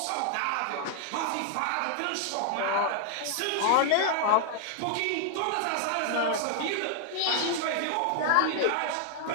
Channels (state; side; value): different; both; correlation 0.00